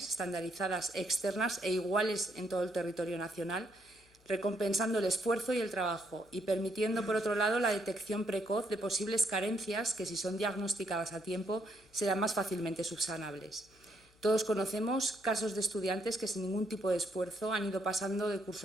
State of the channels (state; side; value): noise; left; hum, 30 dB below the sound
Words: estandarizadas, externas e iguales en todo el territorio nacional, recompensando el esfuerzo y el trabajo y permitiendo, por otro lado, la detección precoz de posibles carencias que, si son diagnosticadas a tiempo, serán más fácilmente subsanables. Todos conocemos casos de estudiantes que sin ningún tipo de esfuerzo han ido pasando de